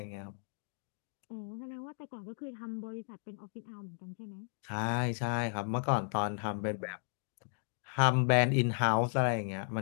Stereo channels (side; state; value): right; silent; digital silence